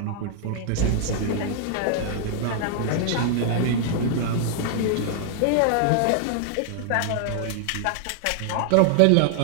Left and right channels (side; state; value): both; different; correlation -0.01